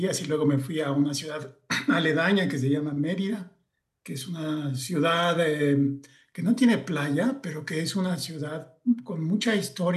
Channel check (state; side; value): identical; both; correlation 1.00